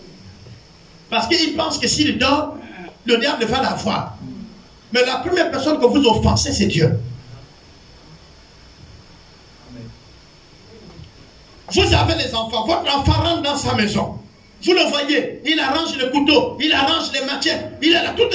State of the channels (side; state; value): both; identical; correlation 1.00